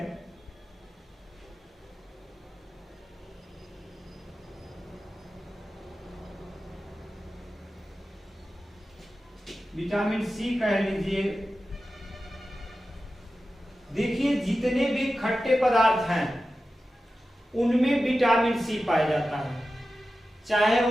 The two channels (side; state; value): both; normal; correlation 0.93